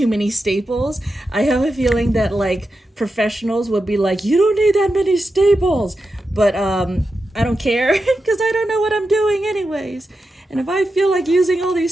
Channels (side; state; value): both; normal; correlation 0.89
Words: many staples. I have a feeling that like professionals would be like, you don't need that many staples. But I don't care because I don't know what I'm doing anyways. And if I feel like using all